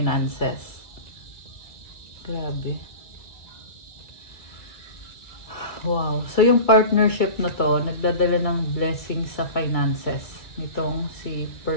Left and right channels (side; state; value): right; late; 1.9 ms